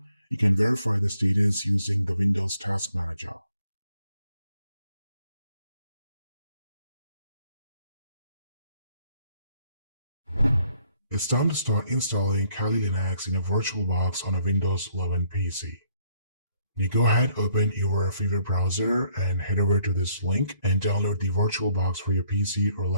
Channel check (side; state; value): both; inverted; correlation -0.67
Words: you can verify the status using the Windows Task Manager. It's time to start installing Kali Linux in a VirtualBox on a Windows 11 PC. You go ahead, open your favorite browser and head over to this link and download the VirtualBox for your PC or